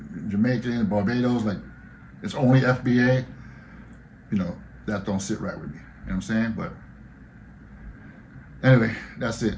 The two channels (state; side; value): identical; both; correlation 1.00